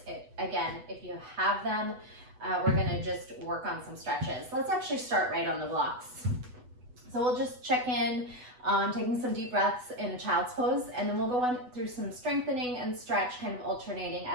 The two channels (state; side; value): late; left; 8.0 ms